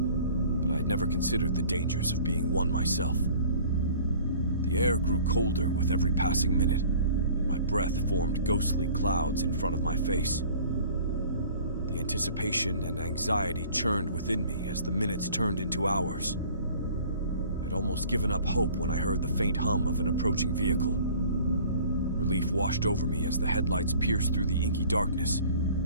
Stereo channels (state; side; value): inverted; both; correlation -0.49